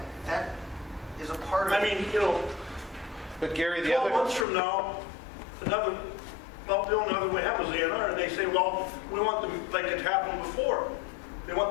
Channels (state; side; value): drops out; right; at 4.5 s